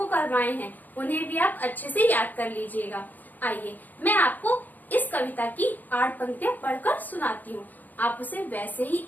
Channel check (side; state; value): right; late; 0.084 ms